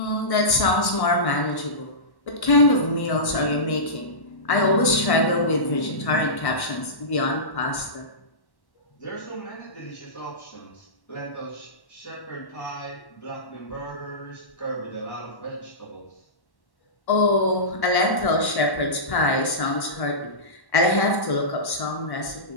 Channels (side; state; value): right; late; 1.1 ms